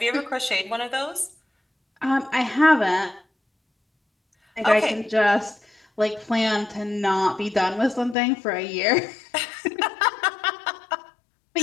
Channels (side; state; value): right; drops out; at 8.2 s